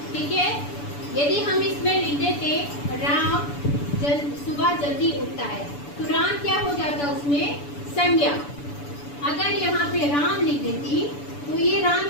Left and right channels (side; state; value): right; late; 6.9 ms